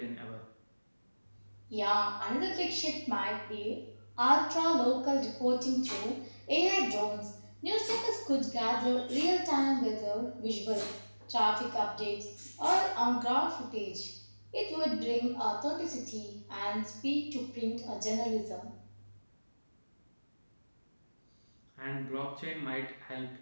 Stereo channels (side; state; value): both; inverted; correlation -1.00